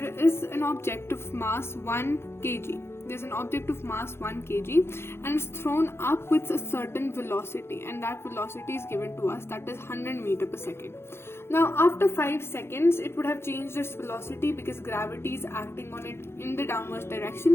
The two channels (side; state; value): right; late; 0.12 ms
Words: is an object of mass 1 kg. There's an object of mass 1 kg and it's thrown up with a certain velocity, and that velocity is given to us, that is 100 meter per second. Now after 5 seconds it would have changed its velocity because gravity is acting on it in the downwards